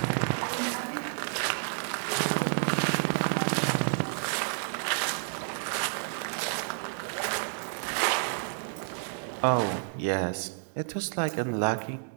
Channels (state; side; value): silent; left; digital silence